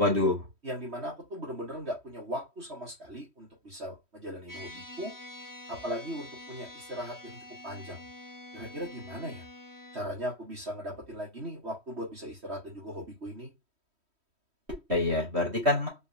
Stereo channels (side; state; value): left; late; 3.1 ms